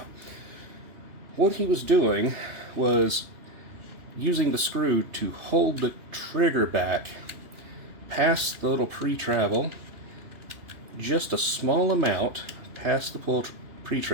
what he was doing was using the screw to hold the trigger back past the little pre-travel, just a small amount past the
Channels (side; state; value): left; late; 2.7 ms